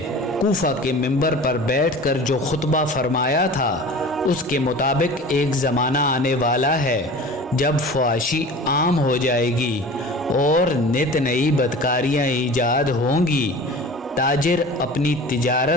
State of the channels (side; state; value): both; normal; correlation 0.39